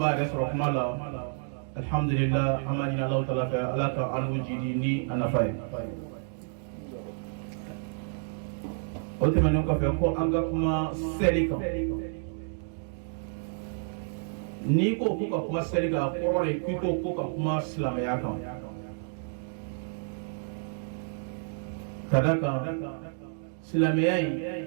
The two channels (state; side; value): silent; left; digital silence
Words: yɛrɛ sɔrɔ kuma la alhamdulillah an b'a ɲini Alahu Taala fɛ Ala ka an n'u jidi ni a nafa ye o tɛmɛnen kɔfɛ ko an ka kuma seli kan n'i ko ko ka kuma seli kan a kɔrɔ de k'i ko ka kuma silamɛya kan ka da kan silamɛya in